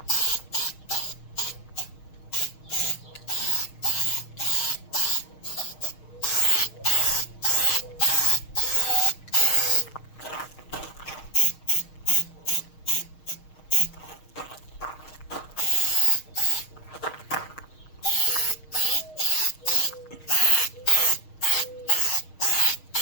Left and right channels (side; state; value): right; late; 6.4 ms